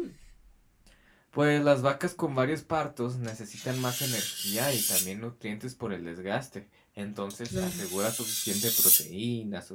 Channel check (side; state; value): both; identical; correlation 1.00